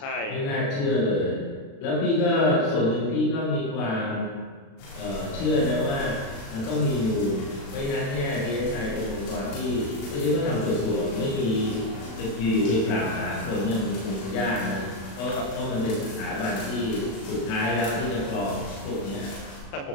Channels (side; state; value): right; late; 36 ms